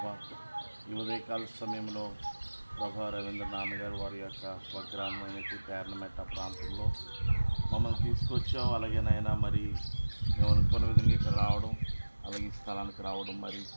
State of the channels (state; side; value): inverted; both; correlation -1.00